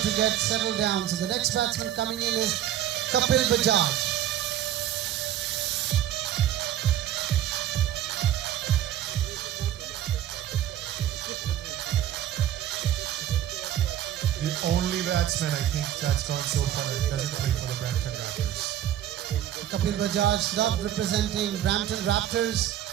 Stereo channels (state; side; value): quieter; left; 11.5 dB